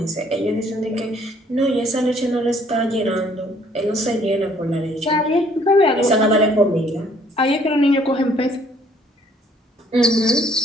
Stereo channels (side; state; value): both; normal; correlation 0.62